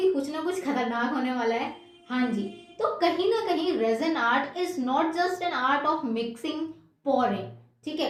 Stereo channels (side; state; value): both; identical; correlation 1.00